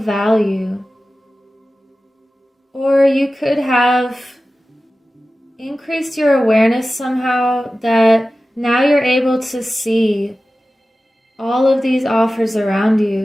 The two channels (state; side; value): normal; both; correlation 0.95